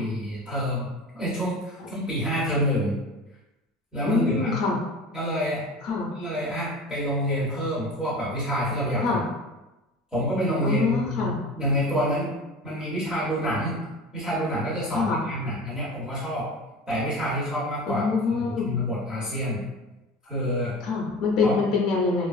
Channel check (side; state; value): both; normal; correlation 0.34